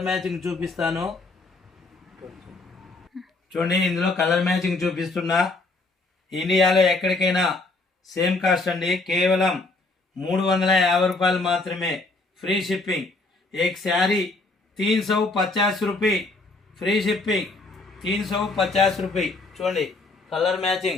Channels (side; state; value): right; quieter; 3.3 dB